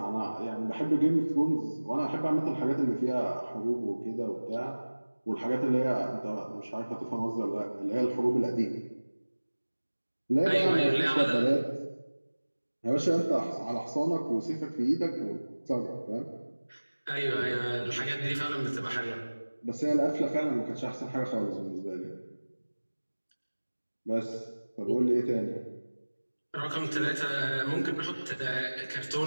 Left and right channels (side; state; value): both; inverted; correlation -1.00